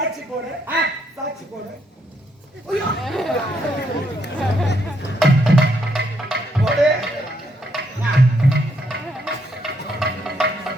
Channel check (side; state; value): both; normal; correlation 0.75